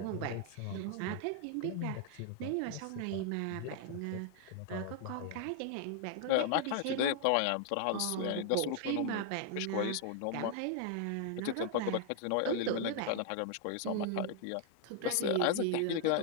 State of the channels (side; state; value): both; different; correlation 0.00